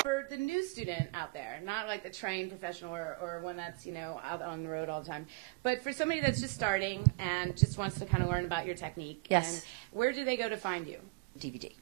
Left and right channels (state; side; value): quieter; left; 28.0 dB